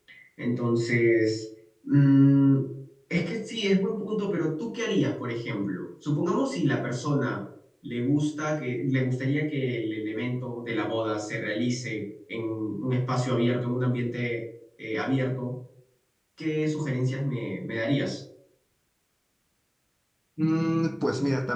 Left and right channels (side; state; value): both; identical; correlation 1.00